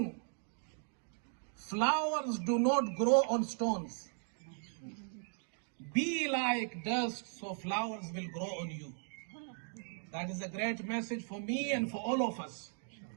flowers do not grow on stones. Be like dust, so flowers will grow on you. That is a great message for me and for all of us.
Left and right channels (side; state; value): left; silent; 53 dB below the other